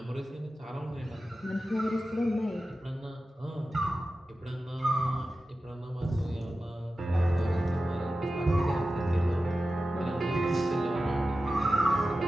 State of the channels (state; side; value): normal; both; correlation 0.93